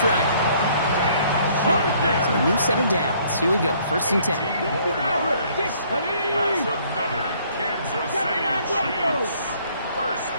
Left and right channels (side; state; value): both; inverted; correlation -0.62